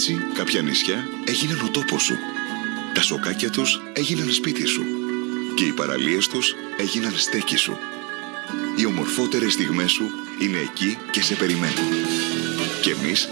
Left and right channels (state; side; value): quieter; left; 30.8 dB